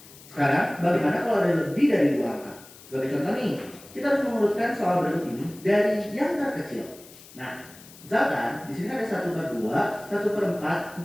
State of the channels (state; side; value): noise; left; hiss, 20 dB below the sound